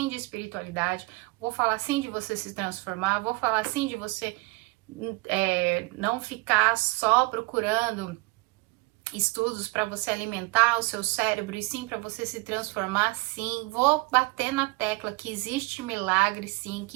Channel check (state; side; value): quieter; left; 25.4 dB